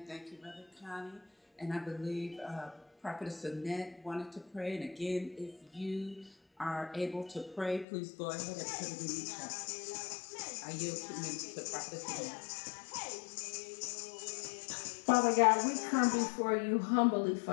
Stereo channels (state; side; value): drops out; right; at 7.9 s